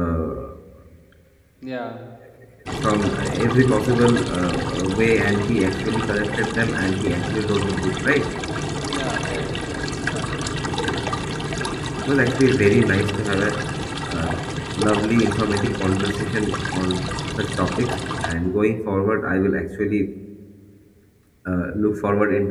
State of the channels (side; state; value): both; identical; correlation 1.00